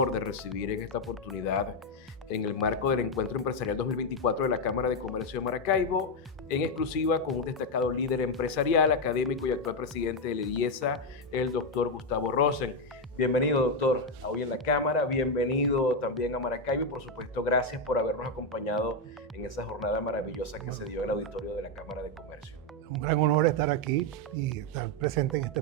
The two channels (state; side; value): normal; both; correlation 0.05